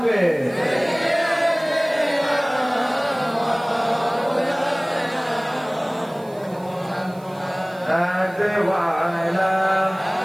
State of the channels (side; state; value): right; noise; hiss, 26 dB below the sound